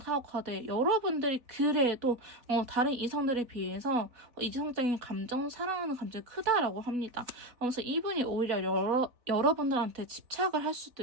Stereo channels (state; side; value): late; left; 3.9 ms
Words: 카드. 여러분들이 그래도 다른 이성들에 비해서 이성적인 감정, 사랑하는 감정이 크다라고 합니다. 그래서 이분이 오히려 여러분들한테 집착을 할